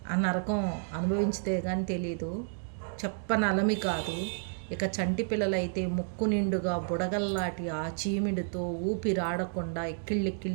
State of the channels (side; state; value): left; silent; digital silence